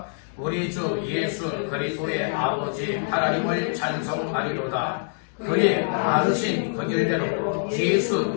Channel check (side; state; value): right; silent; digital silence